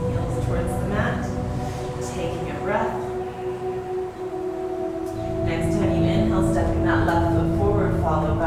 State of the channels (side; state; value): both; identical; correlation 1.00